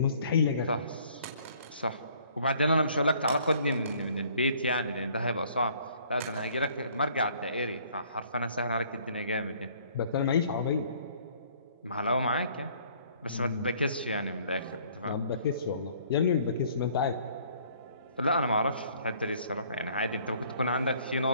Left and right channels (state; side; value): inverted; both; correlation -0.58